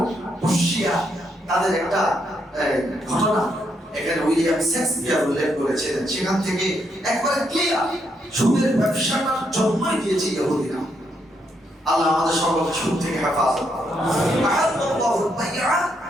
পুশিয়া, তাদের একটা ঘটনা এখানে উইলিয়াম শেক্সপিয়ার উল্লেখ করেছিলেন। সেখান থেকে একবারে ক্লিয়ার সুদের ব্যবসাটার জন্মই দিয়েছে ইহুদিরা। আল্লাহ আমাদের সকলকে সুদ থেকে হেফাজত করুন। আহাল্লাহুল বাইআ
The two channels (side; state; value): both; normal; correlation 0.77